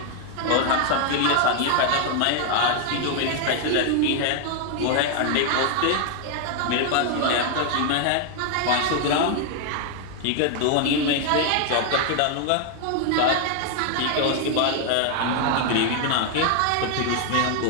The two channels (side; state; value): both; different; correlation 0.00